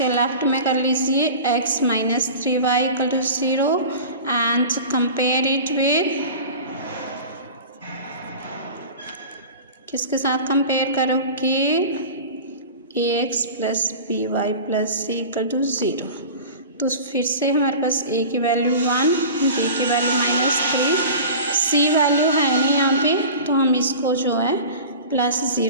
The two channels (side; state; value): both; inverted; correlation -0.36